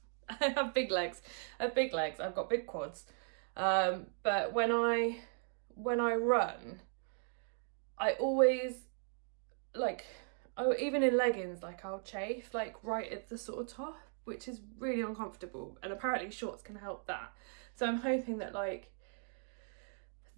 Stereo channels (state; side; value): silent; left; 53 dB below the other